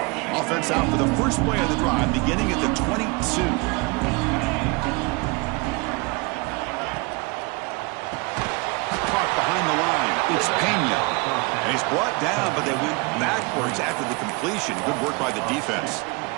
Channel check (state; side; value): quieter; left; 28.0 dB